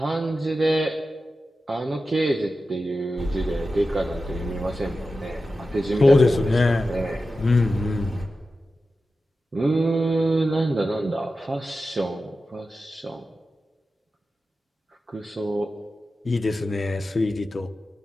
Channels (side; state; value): both; normal; correlation 0.92